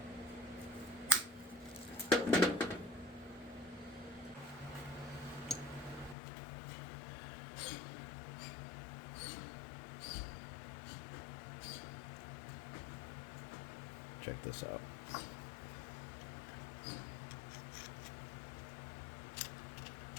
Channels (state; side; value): drops out; right; at 6.2 s